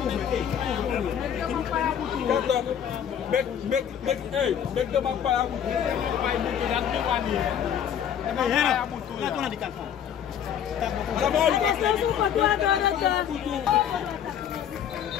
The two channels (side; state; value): right; quieter; 9.0 dB